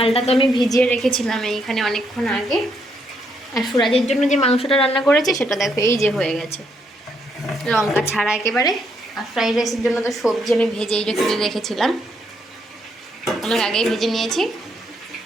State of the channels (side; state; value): both; normal; correlation 0.75